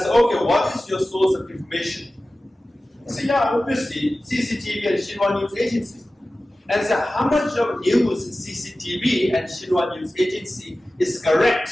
okay, what is your source of information? He said, yeah, obviously, CCTV and Xinhua News Agency. And I said, how much of news in CCTV and Xinhua News Agency is correct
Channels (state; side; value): normal; both; correlation 0.96